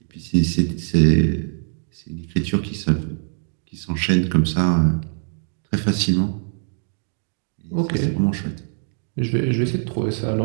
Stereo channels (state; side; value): silent; left; digital silence